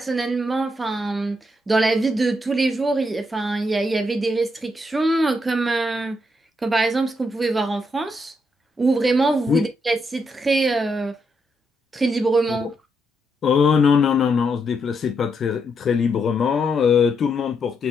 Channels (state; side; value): normal; both; correlation 0.79